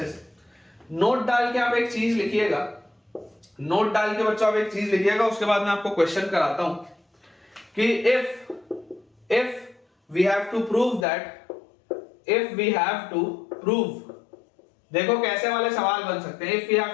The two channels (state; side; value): drops out; right; at 11.1 s